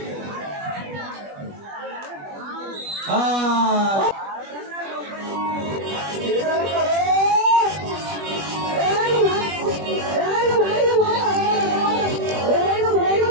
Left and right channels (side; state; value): left; late; 21 ms